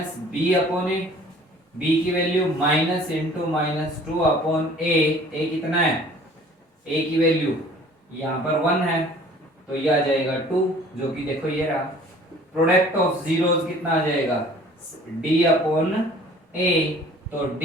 upon a, b की value minus into -2 upon a कितना है a की वैल्यू यहाँ पर 1 है तो ये आ जाएगा 2, जो कि देखो ये रहा। प्रोडक्ट ऑफ जीरोस कितना आ जाएगा d अपॉन a, तो d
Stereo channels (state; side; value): normal; both; correlation 0.50